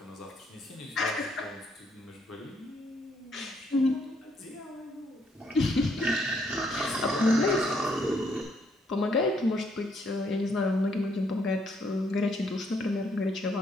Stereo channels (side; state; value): both; normal; correlation 0.71